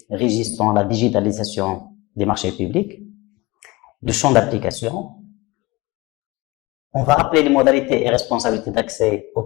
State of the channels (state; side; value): quieter; right; 21.8 dB